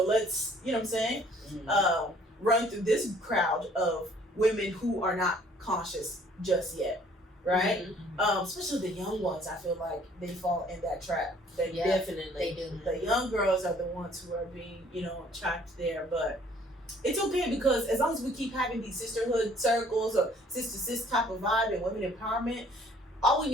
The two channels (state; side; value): normal; both; correlation 0.58